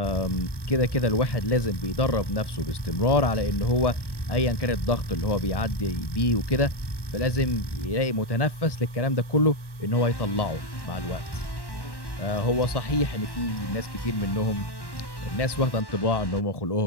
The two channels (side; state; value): right; late; 1.1 ms